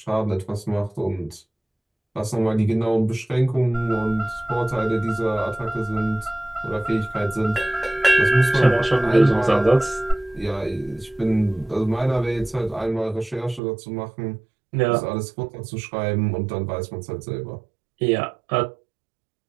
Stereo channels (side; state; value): left; drops out; at 13.6 s